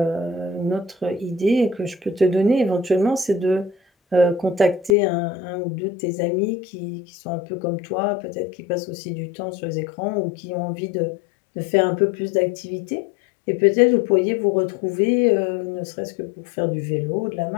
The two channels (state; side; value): drops out; right; at 5.0 s